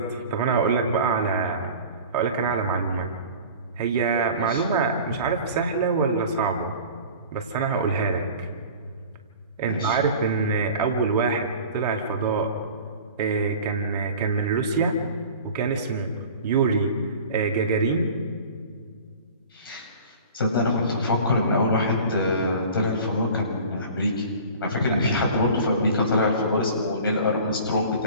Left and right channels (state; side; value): inverted; both; correlation -0.41